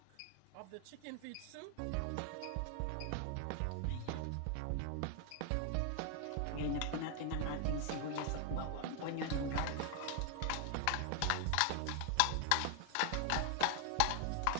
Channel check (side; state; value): both; different; correlation 0.00